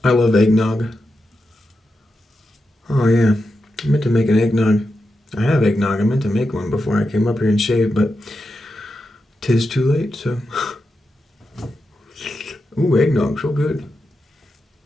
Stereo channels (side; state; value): both; normal; correlation 0.88